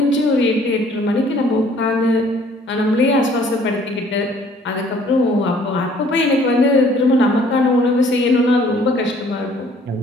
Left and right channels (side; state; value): both; normal; correlation 0.58